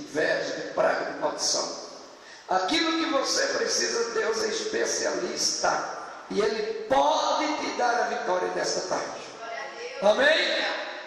de praga, de maldição. Aquilo que você precisa, Deus é especialista, e Ele pode te dar a vitória nesta tarde. Amém?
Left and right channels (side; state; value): both; identical; correlation 1.00